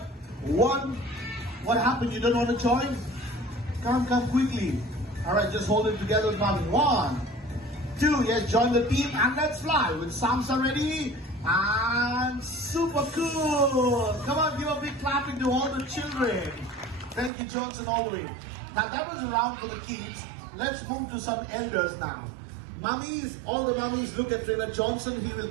One. What happened? You don't want to join? Come quickly. All right, just hold it together with mommy. 1, 2. Yes, join the team and let's fly. With Samsa ready and super cool. Come on, give a big clapping to all the children. Thank you, Johnson, all the way. Now that was a round for the kids. Let's move to some elders now. Mummies, all the mummies, look at Trainer Johnson. He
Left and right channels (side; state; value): left; drops out; at 17.3 s